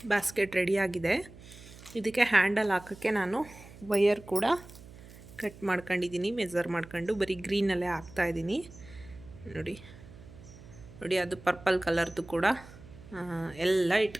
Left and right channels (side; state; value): right; noise; hum, 19 dB below the sound